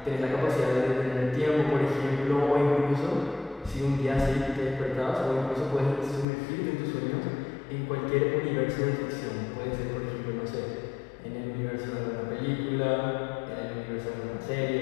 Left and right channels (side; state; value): right; drops out; at 6.2 s